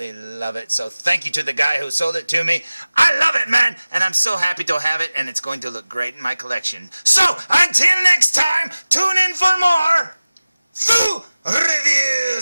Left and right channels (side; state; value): both; inverted; correlation -0.97